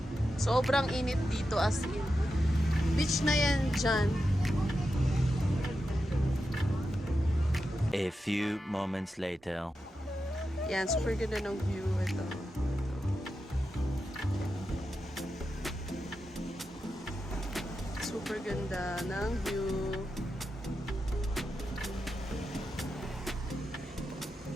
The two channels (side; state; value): both; normal; correlation 0.89